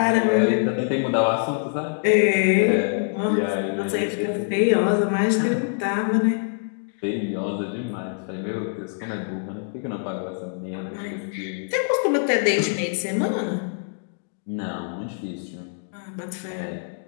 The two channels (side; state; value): right; silent; digital silence